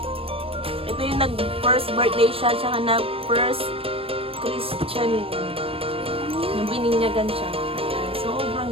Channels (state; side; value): late; left; 0.28 ms